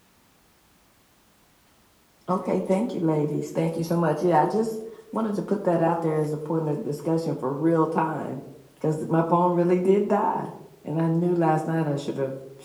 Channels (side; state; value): both; identical; correlation 1.00